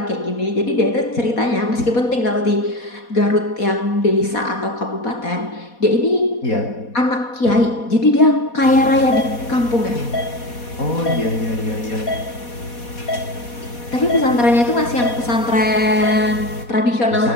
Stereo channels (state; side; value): late; right; 4.2 ms